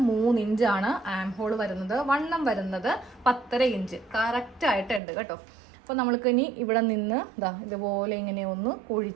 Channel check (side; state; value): left; drops out; at 5.0 s